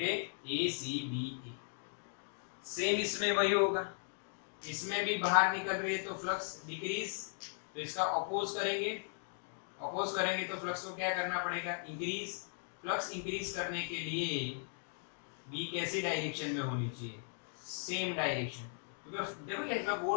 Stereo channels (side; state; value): right; silent; digital silence